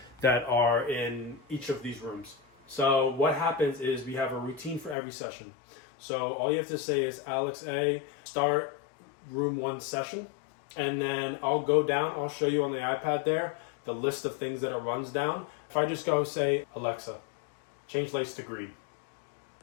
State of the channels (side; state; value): right; drops out; at 5.0 s